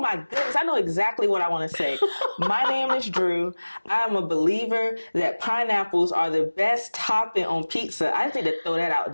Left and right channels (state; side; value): inverted; both; correlation -1.00